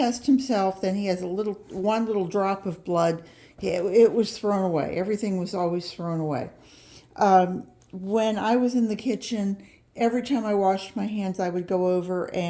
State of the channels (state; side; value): identical; both; correlation 1.00